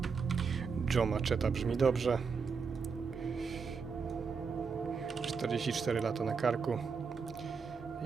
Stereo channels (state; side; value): quieter; left; 5.5 dB